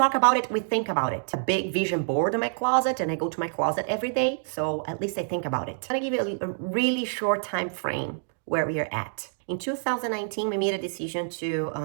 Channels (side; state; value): left; silent; digital silence